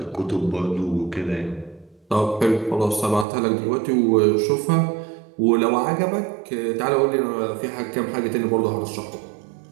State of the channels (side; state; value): left; drops out; at 3.2 s